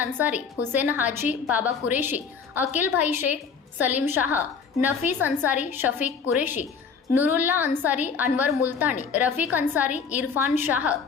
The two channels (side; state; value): right; quieter; 5.8 dB